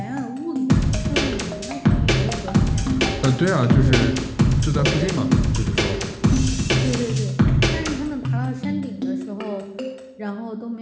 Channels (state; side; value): identical; both; correlation 1.00